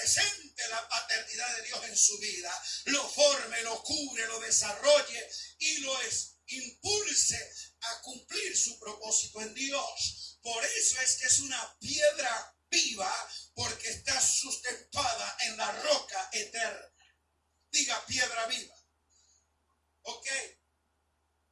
la paternidad de Dios en su vida, lo forme, lo cubre, lo desarrolle y lo impulse a cumplir su propósito en Dios. Por eso es que es una piedra viva, porque está sustentada en la roca eterna. Diga piedra viva. Ok.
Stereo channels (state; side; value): identical; both; correlation 1.00